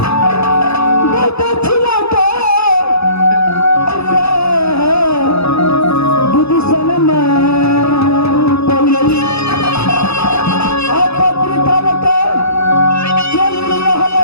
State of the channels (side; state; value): right; late; 0.79 ms